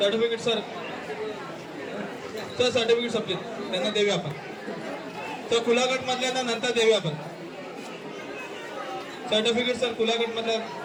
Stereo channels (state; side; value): identical; both; correlation 1.00